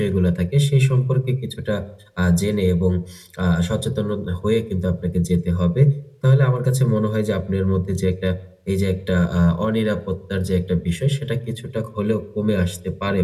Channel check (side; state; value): both; identical; correlation 1.00